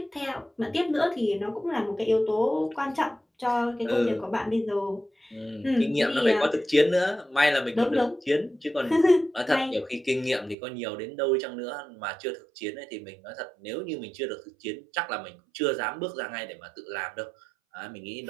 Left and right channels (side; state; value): left; drops out; at 10.6 s